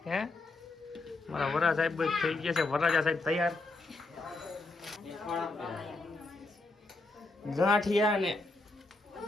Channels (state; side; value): quieter; right; 3.2 dB